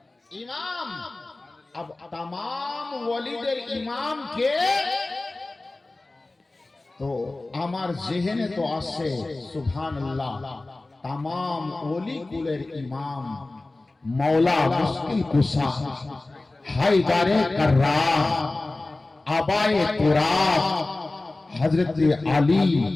ইমাম। अब तमाम ওয়ালিদের ইমাম কে? তো আমার জেহেনে তো আসে সুবহানাল্লাহ तमाम ওলি কুলের ইমাম मौला मुश्किल कुशा हैदरे कर्रार आबाए तुराब हजरत अली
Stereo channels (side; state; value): right; quieter; 3.0 dB